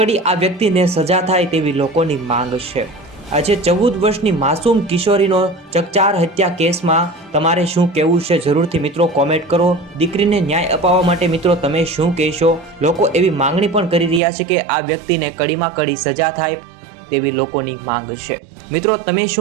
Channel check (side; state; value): left; drops out; at 14.2 s